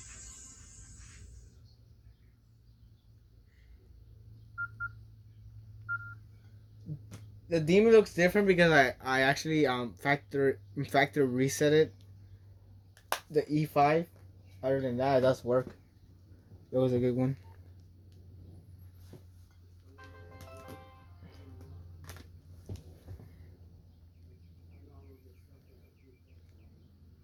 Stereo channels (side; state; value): both; identical; correlation 1.00